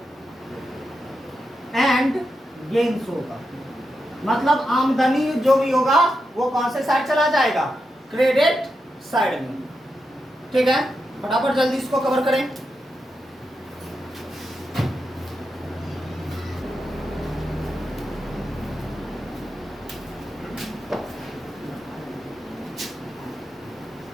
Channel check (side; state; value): both; normal; correlation 0.87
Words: एंड गेन्स होगा, मतलब आमदनी जो भी होगा वो कौन से साइड चला जाएगा? क्रेडिट साइड में। ठीक है, फटाफट जल्दी इसको कवर करें।